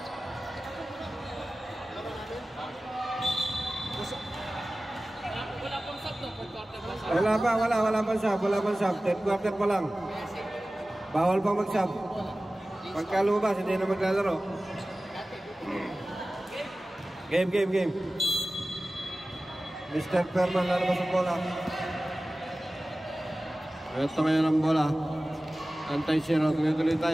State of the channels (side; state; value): both; normal; correlation 0.97